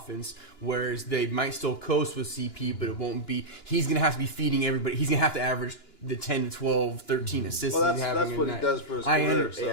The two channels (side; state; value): right; late; 2.9 ms